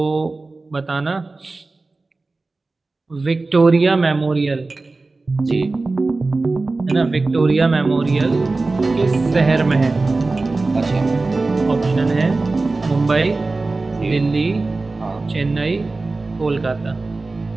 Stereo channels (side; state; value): left; quieter; 3.5 dB